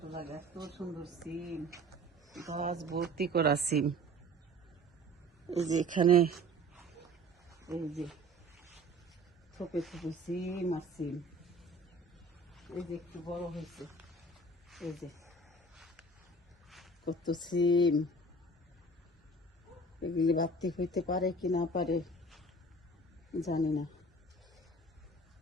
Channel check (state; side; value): normal; both; correlation 0.45